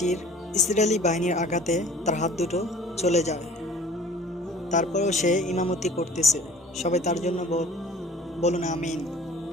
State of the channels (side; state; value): both; normal; correlation 0.48